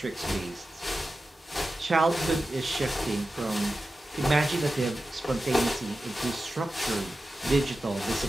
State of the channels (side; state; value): both; normal; correlation 0.93